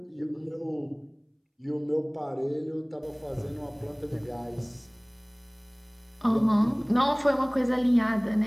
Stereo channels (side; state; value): both; identical; correlation 1.00